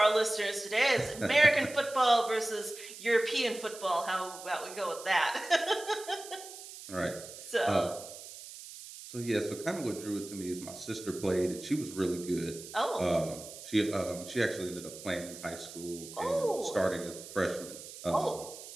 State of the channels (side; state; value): right; noise; hiss, 14 dB below the sound